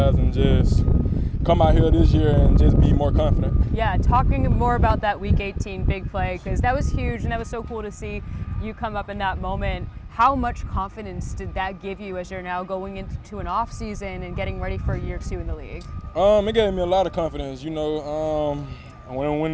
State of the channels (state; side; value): identical; both; correlation 1.00